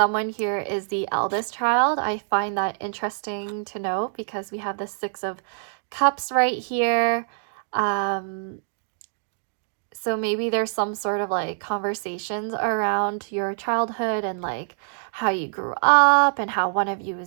here is the eldest child. I find that interesting to note because we have the Six of Cups right here. So maybe there's some sort of like conversations around your childhood and like how you grew up, and how one of you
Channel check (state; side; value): silent; left; digital silence